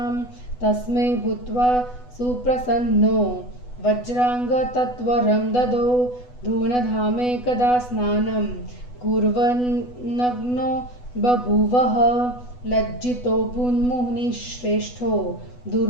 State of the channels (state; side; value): late; right; 8.1 ms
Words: तस्मै भूत्वा सुप्रसन्नो वज्राङ्गतत्वरं ददौ। धूनधामेकदा स्नानं कुर्वन्नग्नो बभूवः लज्जितोऽभून्मुनिश्रेष्ठो